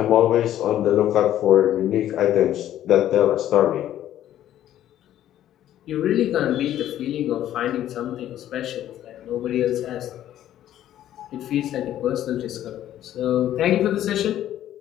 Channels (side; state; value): right; quieter; 12.1 dB